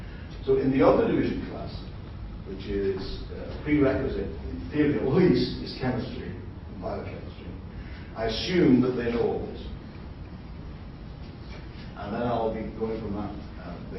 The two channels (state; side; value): identical; both; correlation 1.00